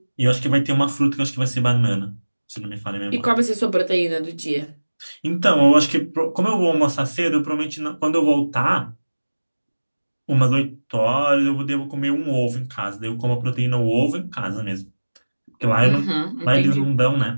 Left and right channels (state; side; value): inverted; both; correlation -1.00